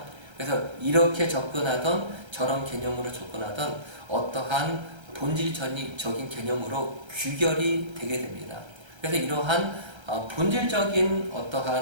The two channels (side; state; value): left; late; 1.3 ms